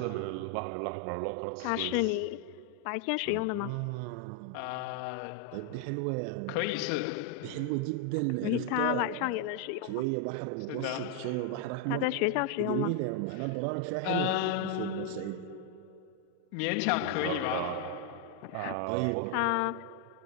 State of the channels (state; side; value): different; both; correlation 0.01